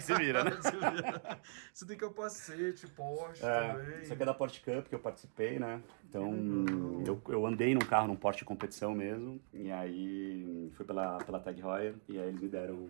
você vira, né? Você tem capacete, Porsche É, também. isso aqui é da Porsche Cup que eu participei, né? Então, eu andei num carro, num Porsche de competição mesmo. E aí, fui pela Tag Heuer. E aí eles me deram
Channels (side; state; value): left; silent; digital silence